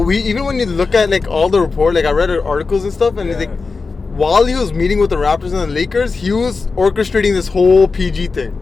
when you look at like all the report, like I read articles and stuff, and it's like, while he was meeting with the Raptors and the Lakers, he was orchestrating this whole PG thing.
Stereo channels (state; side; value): quieter; right; 4.3 dB